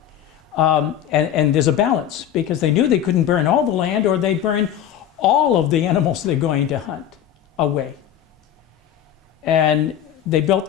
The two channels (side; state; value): right; quieter; 10.3 dB